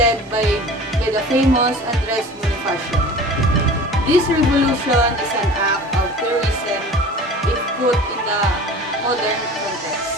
by the famous Andres Bonifacio. This revolution is an act of terrorism if put in the modern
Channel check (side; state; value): both; normal; correlation 0.40